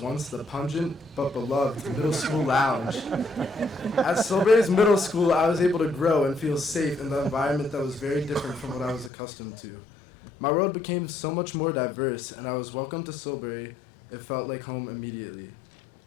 once the pungent but beloved middle school lounge. At Silbury's middle school, I was able to grow and feel safe in the environment that was very different from what I was accustomed to. My world became so much more diverse, and I was welcomed to Silbury. It felt like home immediately.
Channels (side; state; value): right; drops out; at 9.1 s